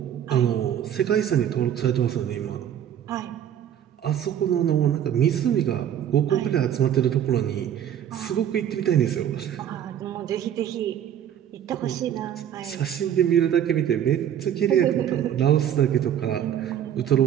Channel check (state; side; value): quieter; left; 10.0 dB